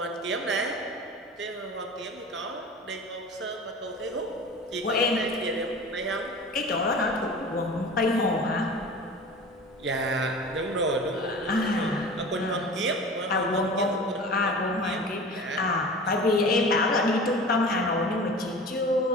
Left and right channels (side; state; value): both; normal; correlation 0.38